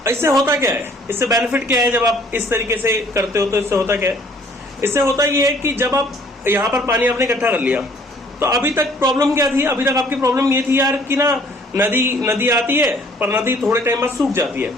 इससे होता क्या है, इससे बेनिफिट क्या है जब आप इस तरीके से करते हो? तो इससे होता क्या है, इससे होता ये है कि जब आप यहाँ पर पानी आपने इकट्ठा कर लिया, तो अभी तक प्रॉब्लम क्या थी? अभी तक आपकी प्रॉब्लम ये थी यार कि ना नदी आती है पर नदी थोड़े टाइम बाद सूख जाती है।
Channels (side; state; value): both; normal; correlation 0.58